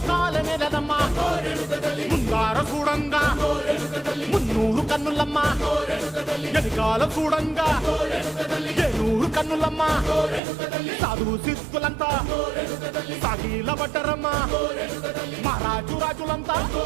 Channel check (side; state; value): left; drops out; at 10.4 s